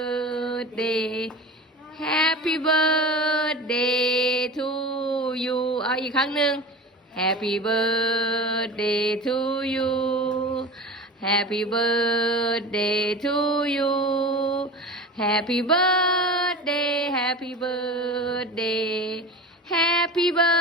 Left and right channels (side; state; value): both; normal; correlation 0.32